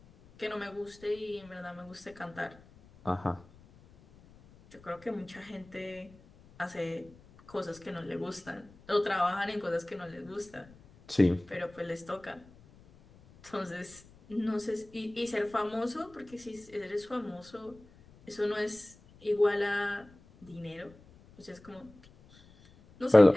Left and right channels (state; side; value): noise; left; rumble, 24 dB below the sound